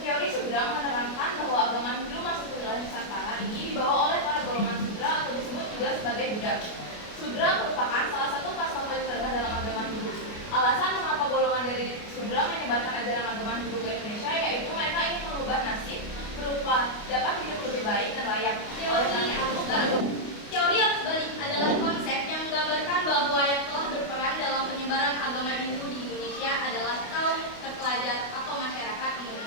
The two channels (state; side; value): late; right; 28 ms